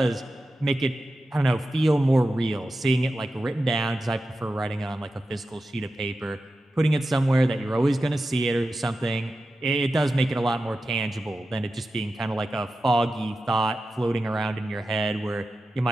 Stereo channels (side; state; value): both; normal; correlation 0.92